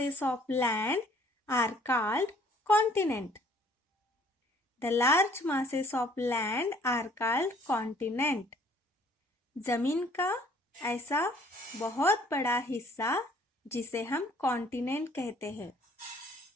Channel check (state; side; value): normal; both; correlation 0.58